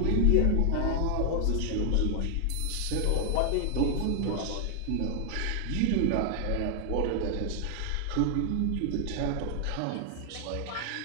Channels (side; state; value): both; different; correlation 0.00